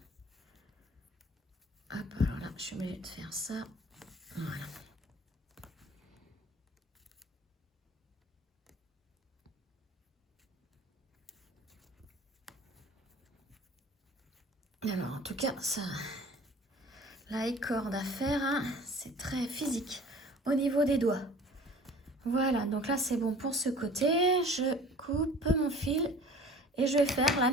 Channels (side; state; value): both; normal; correlation 0.46